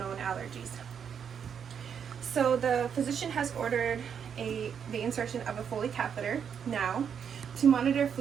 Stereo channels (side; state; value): left; quieter; 7.6 dB